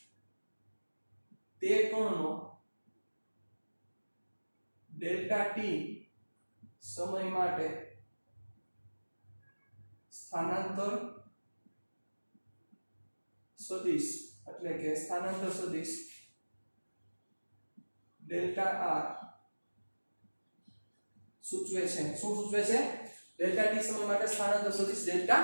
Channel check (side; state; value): both; inverted; correlation -1.00